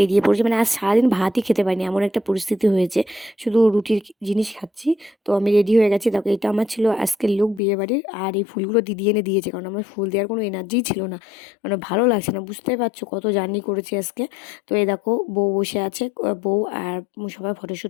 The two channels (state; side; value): drops out; right; at 7.6 s